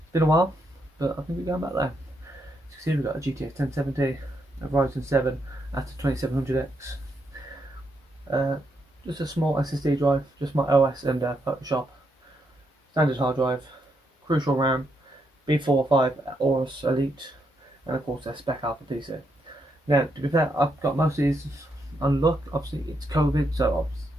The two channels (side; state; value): both; normal; correlation 0.79